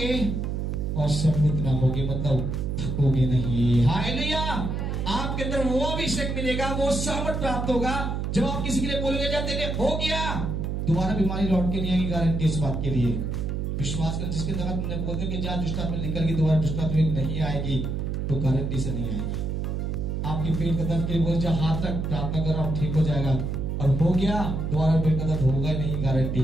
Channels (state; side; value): noise; right; hum, 2 dB below the sound